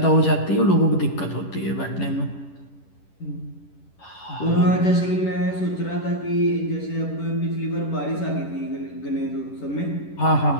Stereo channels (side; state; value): right; late; 10 ms